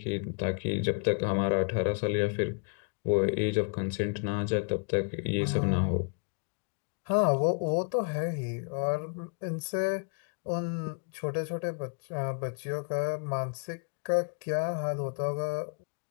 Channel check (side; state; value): right; quieter; 38.5 dB